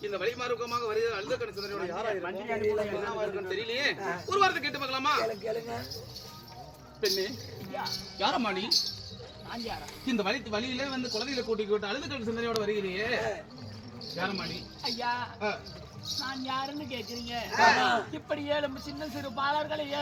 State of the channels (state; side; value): identical; both; correlation 1.00